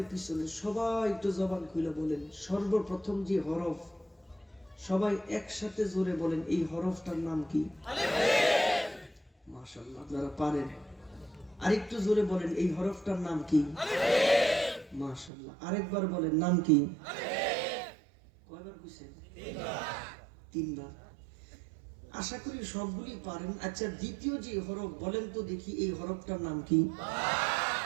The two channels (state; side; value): drops out; left; at 15.3 s